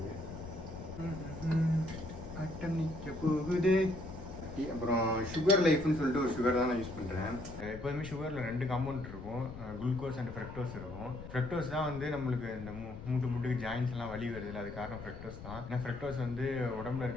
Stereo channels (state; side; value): noise; left; rumble, 12 dB below the sound